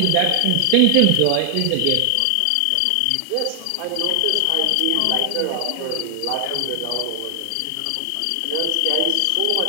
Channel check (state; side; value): different; both; correlation 0.00